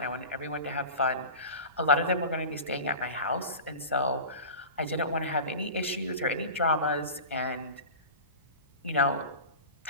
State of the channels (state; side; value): inverted; both; correlation -0.32